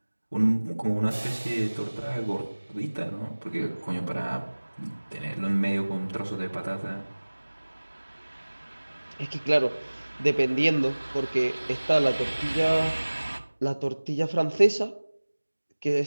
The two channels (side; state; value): both; inverted; correlation -1.00